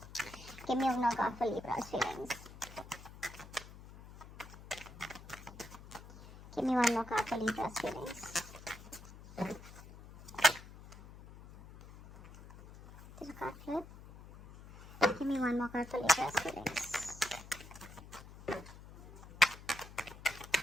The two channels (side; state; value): left; noise; hum, 17 dB below the sound